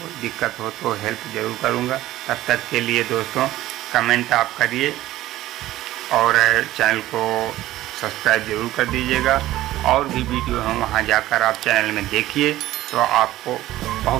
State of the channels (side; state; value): left; quieter; 15.3 dB